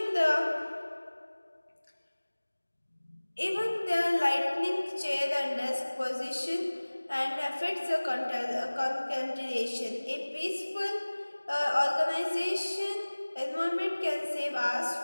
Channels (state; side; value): inverted; both; correlation -1.00